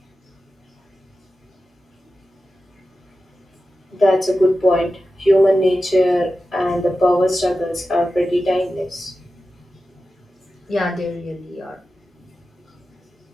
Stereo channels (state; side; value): normal; both; correlation 0.93